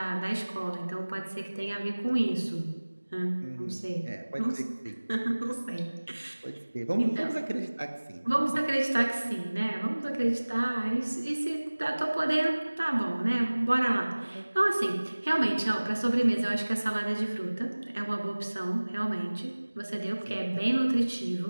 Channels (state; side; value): inverted; both; correlation -1.00